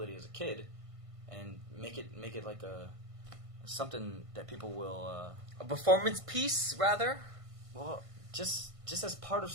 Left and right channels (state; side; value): late; left; 1.5 ms